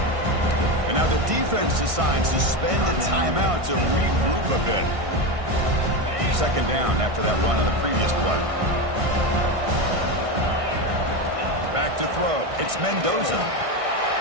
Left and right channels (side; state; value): left; late; 1.6 ms